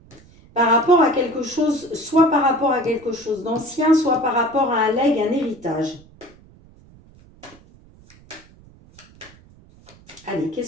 Par rapport à quelque chose, soit par rapport à quelque chose d'ancien, soit par rapport à un legs, un héritage. Allez,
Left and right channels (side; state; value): right; noise; rumble, 25 dB below the sound